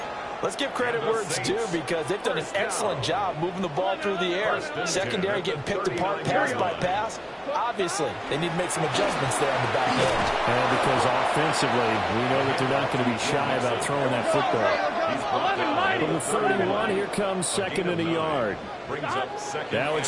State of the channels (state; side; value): identical; both; correlation 1.00